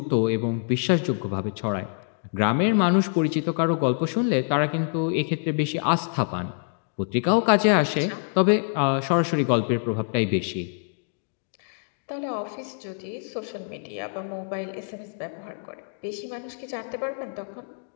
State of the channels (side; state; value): right; silent; digital silence